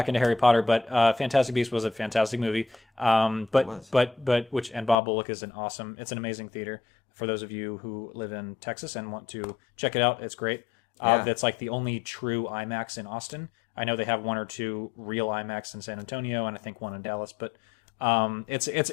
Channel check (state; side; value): drops out; right; at 5.0 s